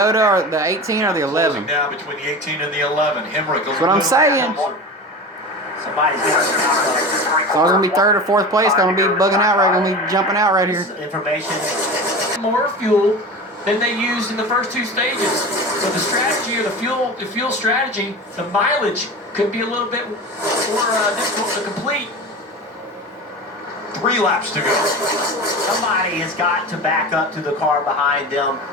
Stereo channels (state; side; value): normal; both; correlation 0.31